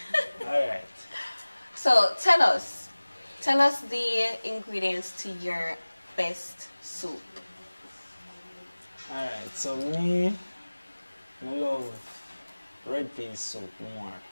Alright. So tell us the ingredients to your best soup. Alright, so me, I love red pea soup more.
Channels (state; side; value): inverted; both; correlation -1.00